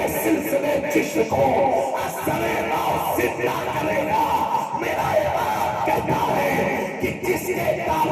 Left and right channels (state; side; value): identical; both; correlation 1.00